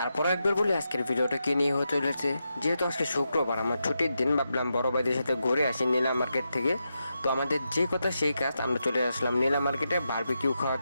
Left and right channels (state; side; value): inverted; both; correlation -0.86